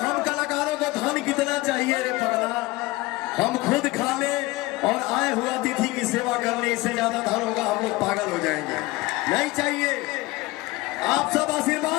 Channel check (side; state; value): right; quieter; 20.6 dB